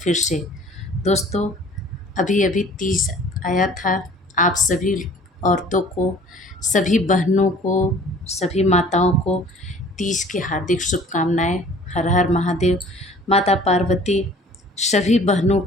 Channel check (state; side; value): normal; both; correlation 0.50